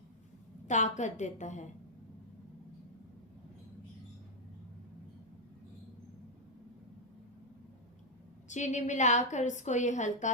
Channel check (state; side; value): normal; both; correlation -0.02